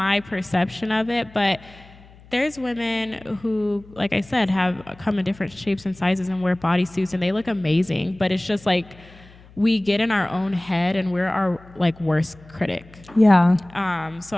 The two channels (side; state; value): left; noise; hum, 24 dB below the sound